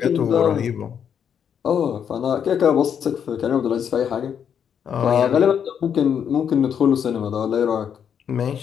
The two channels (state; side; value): quieter; right; 8.1 dB